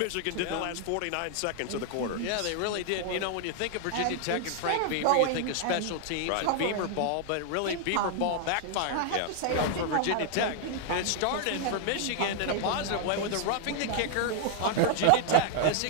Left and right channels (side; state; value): both; different; correlation 0.00